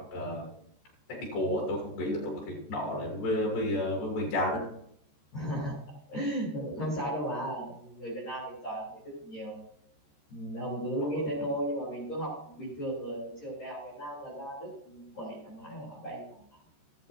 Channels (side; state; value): right; late; 14 ms